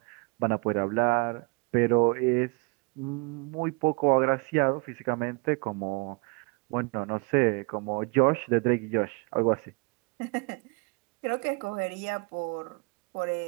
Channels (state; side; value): quieter; left; 30.0 dB